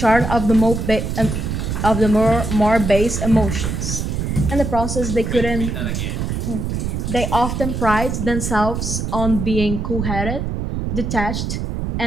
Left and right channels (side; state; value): right; noise; rumble, 2 dB below the sound